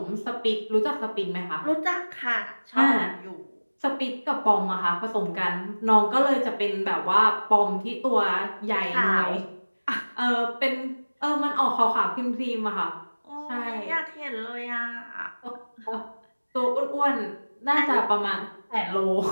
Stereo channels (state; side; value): inverted; both; correlation -1.00